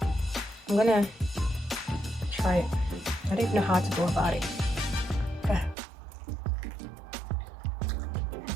I'm gonna try it. I don't even know how to go about it.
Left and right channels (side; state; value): left; drops out; at 5.8 s